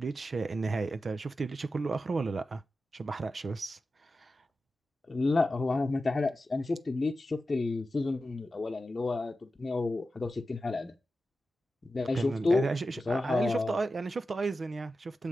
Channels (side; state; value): both; normal; correlation 0.92